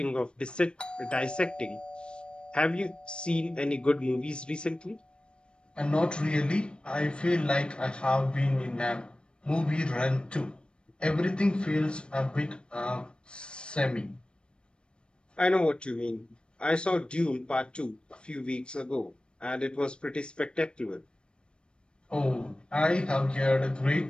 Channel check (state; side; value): late; right; 0.054 ms